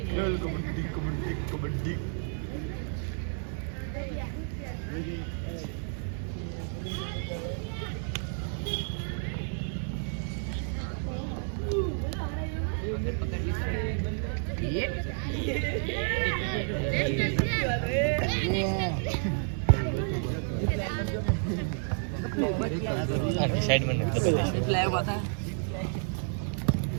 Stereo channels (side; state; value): left; silent; 58 dB below the other